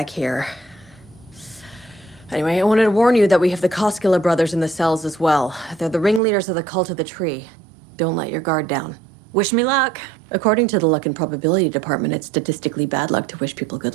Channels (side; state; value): left; drops out; at 6.2 s